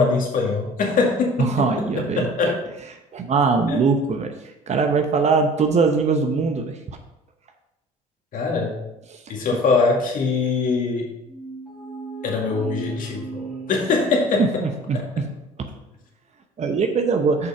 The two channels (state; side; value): normal; both; correlation 0.46